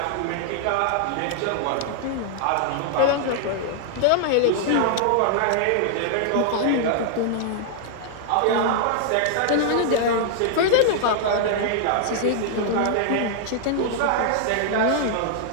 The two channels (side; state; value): both; different; correlation -0.01